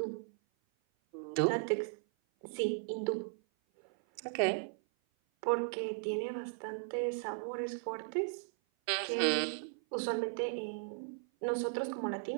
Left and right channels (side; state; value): left; silent; 53 dB below the other